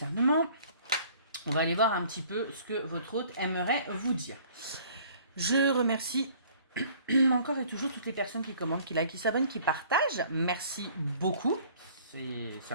On va aller voir un petit peu ce que votre hôte aimerait vous dire. Je remercie encore et toujours toutes les personnes qui commentent, qui likent, qui s'abonnent, qui partagent. Merci beaucoup. Ça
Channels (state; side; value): inverted; both; correlation -0.54